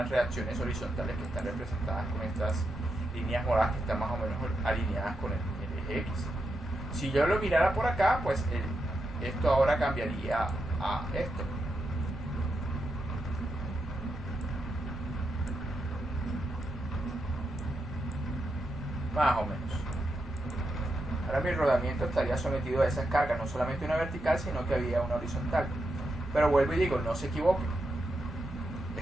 reacciones horizontales que están representadas con estas líneas moradas que están más o menos alineadas con el eje X. Si yo lo mirara por acá, pues esto ahora cambiaría a esto. Más o menos. Ahora mi rodamiento estaría sometido a esas cargas, no solamente una vertical, sino que había una horizontal. Pero vuelvo y digo, no se equivoquen.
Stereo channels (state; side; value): normal; both; correlation 0.85